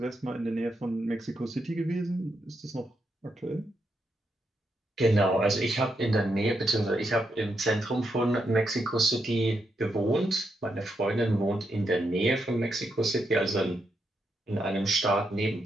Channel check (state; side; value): normal; both; correlation 0.81